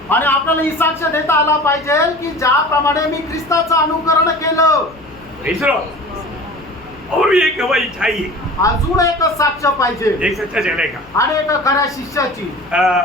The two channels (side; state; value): left; noise; hum, 26 dB below the sound